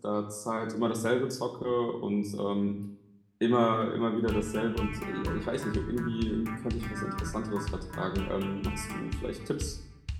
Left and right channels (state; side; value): identical; both; correlation 1.00